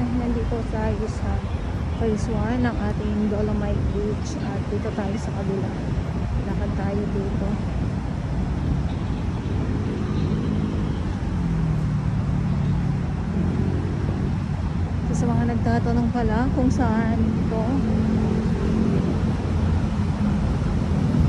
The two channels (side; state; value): both; identical; correlation 1.00